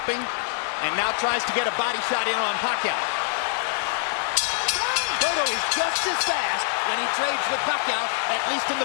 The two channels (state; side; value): silent; right; 62 dB below the other